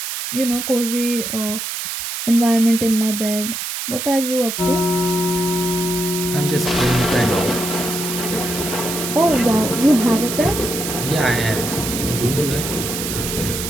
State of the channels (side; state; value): right; noise; hiss, 4 dB below the sound